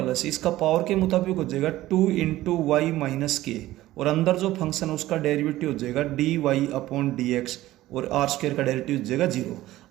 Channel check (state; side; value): quieter; left; 15.8 dB